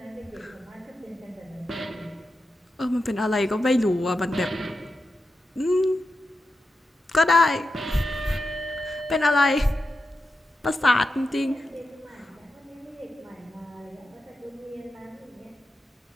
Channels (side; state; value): both; normal; correlation 0.90